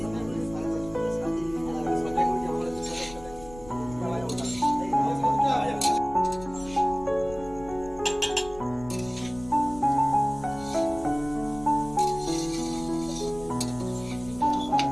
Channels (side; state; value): left; noise; rumble, 17 dB below the sound